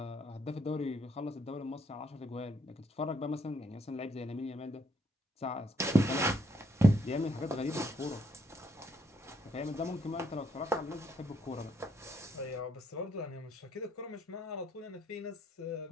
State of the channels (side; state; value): both; normal; correlation 0.72